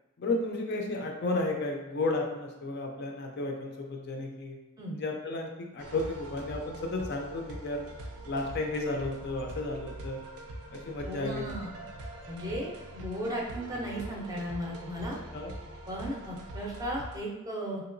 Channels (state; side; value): normal; both; correlation 0.29